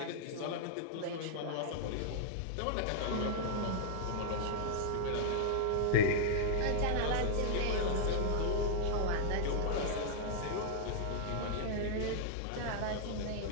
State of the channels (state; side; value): different; both; correlation -0.01